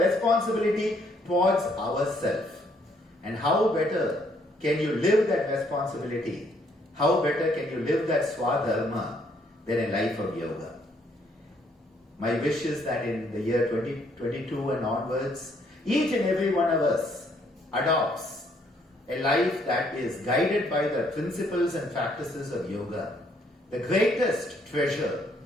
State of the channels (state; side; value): normal; both; correlation 0.68